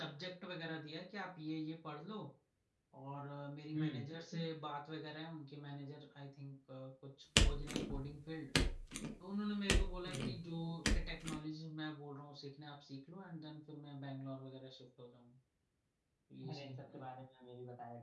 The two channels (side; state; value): both; identical; correlation 1.00